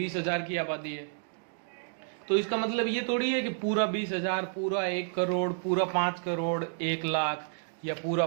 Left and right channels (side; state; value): left; silent; digital silence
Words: की आबादी है। तो इसका मतलब ये थोड़ी है कि पूरा 20,000, पूरा 1 करोड़, पूरा 5 करोड़, 1 लाख, या पूरा